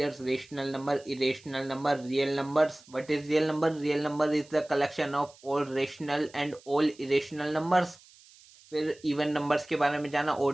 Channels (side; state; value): right; noise; hiss, 25 dB below the sound